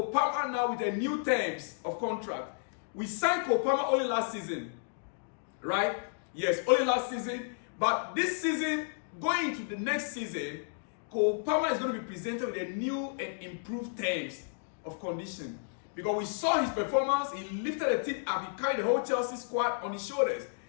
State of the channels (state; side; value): silent; right; digital silence